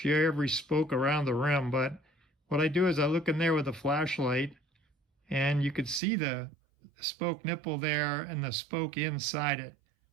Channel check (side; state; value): left; drops out; at 6.0 s